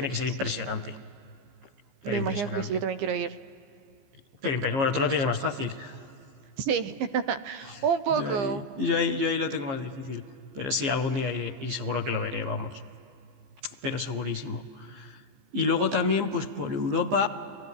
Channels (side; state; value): left; late; 15 ms